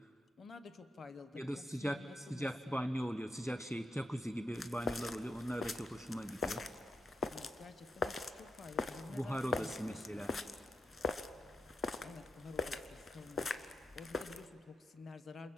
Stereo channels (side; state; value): both; normal; correlation 0.86